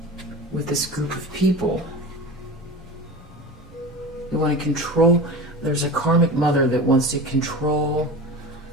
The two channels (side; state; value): both; normal; correlation 0.31